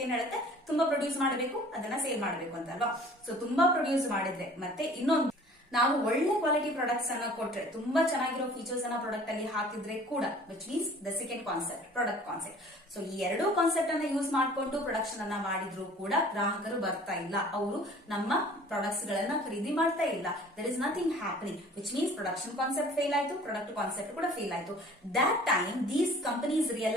ಏನ್ ಹೇಳುತ್ತೆ, ತುಂಬಾ ಪ್ರೊಡ್ಯೂಸ್ ಮಾಡಬೇಕು, ಅದನ್ನ ಸೇಲ್ ಮಾಡಬೇಕು ಅಂತ ಅಲ್ವಾ. ಸೊ ತುಂಬಾ ಪ್ರೊಡ್ಯೂಸ್ ಮಾಡಿದ್ರೆ, ಮತ್ತೆ ಇನ್ನೊಂದು, ನಾವು ಒಳ್ಳೆ ಕ್ವಾಲಿಟಿ ಪ್ರಾಡಕ್ಟ್ಸ್ ಅನ್ನ ಕೊಟ್ರೆ, ತುಂಬಾ ಚೆನ್ನಾಗಿರೋ ಫೀಚರ್ಸ್ ಅನ್ನ ಪ್ರಾಡಕ್ಟ್ ಅಲ್ಲಿ ಹಾಕಿದ್ರೆ ಕೂಡ, which means the second concept, product concept. So ಈ ಎರಡೂ ಕಾನ್ಸೆಪ್ಟ್ ಅನ್ನ ಯೂಸ್ ಮಾಡಿಕೊಂಡು ಪ್ರೊಡಕ್ಷನ್ ಅನ್ನ ಮಾಡಿದ್ರು ಕೂಡ ಗ್ರಾಹಕರು ಬರ್ತಾ ಇಲ್ಲ, ಅವರು ನಮ್ಮ ಪ್ರಾಡಕ್ಟ್ಸ್ ಗಳನ್ನ ಖರೀದಿ ಮಾಡ್ತಾ ಇಲ್ಲ. There is nothing happening, which means production concept fail ಆಯ್ತು, ಪ್ರಾಡಕ್ಟ್ ಕಾನ್ಸೆಪ್ಟ್ ಕೂಡ ಫೇಲ್ ಆಯ್ತು. That time these companies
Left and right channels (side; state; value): both; normal; correlation 0.49